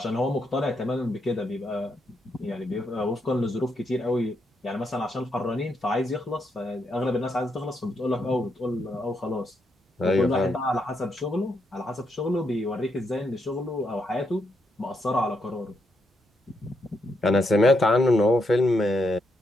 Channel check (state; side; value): normal; both; correlation 0.80